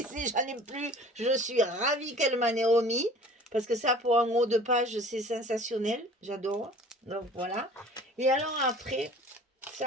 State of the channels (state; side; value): normal; both; correlation 0.46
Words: J'en ai plus. Je suis ravie qu'elle m'en ait remis. Parce que ça, pour un haut de page, c'est sensationnel. J'adore. Donc, voilà. Et alors, après,